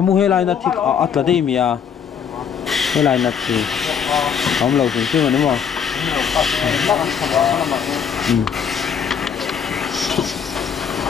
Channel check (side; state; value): right; quieter; 7.5 dB